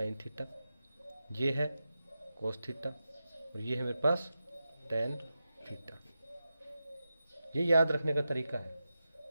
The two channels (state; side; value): inverted; both; correlation -0.91